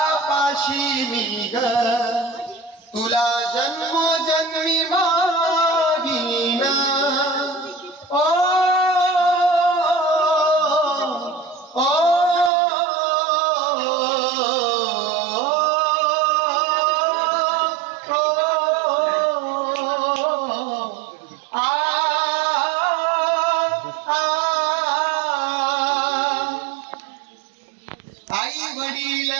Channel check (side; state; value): left; drops out; at 12.5 s